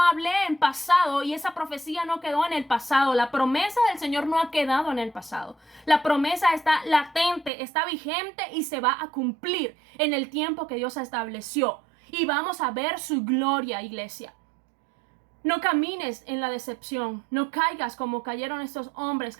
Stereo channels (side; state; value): left; drops out; at 7.5 s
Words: en pasado y esa profecía no quedó en el pasado. La promesa del Señor no ha quedado en el pasado. La promesa está latente, está vigente y se va a cumplir en el tiempo que Dios estableció. Y vamos a ver su gloria, iglesia. No camines en la decepción, no caigas como cayeron estos hombres